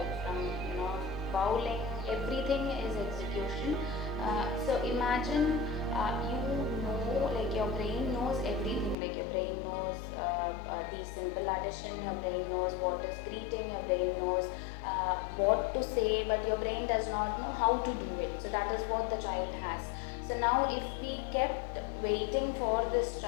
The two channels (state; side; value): drops out; right; at 9.0 s